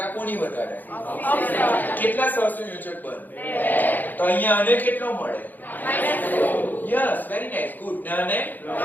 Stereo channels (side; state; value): right; late; 0.086 ms